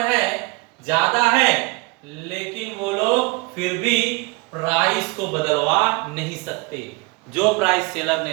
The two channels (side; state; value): left; quieter; 27.1 dB